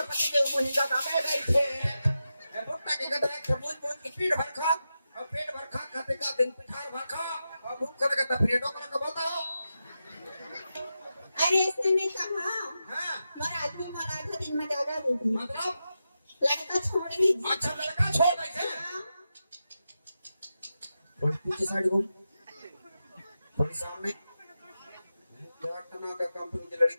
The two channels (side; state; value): both; inverted; correlation -0.89